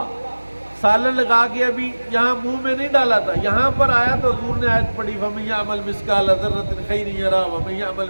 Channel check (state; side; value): inverted; both; correlation -1.00